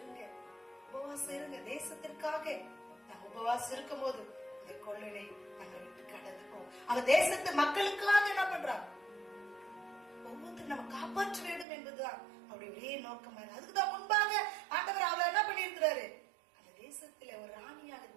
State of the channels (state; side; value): drops out; left; at 11.7 s